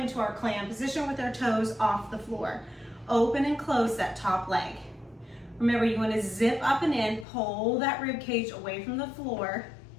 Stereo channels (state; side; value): drops out; right; at 7.2 s